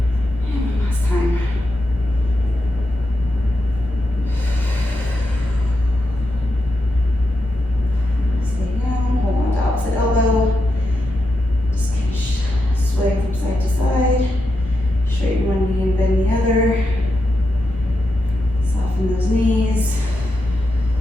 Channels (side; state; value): both; normal; correlation 0.86